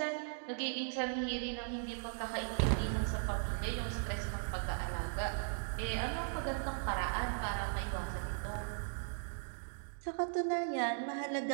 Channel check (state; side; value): silent; left; digital silence